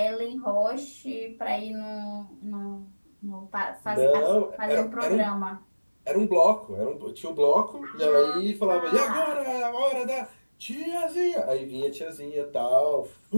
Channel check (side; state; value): both; inverted; correlation -1.00